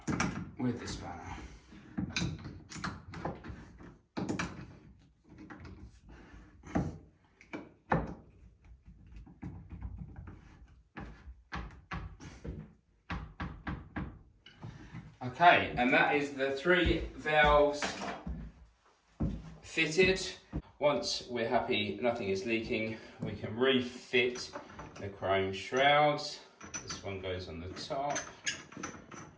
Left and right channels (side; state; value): both; identical; correlation 1.00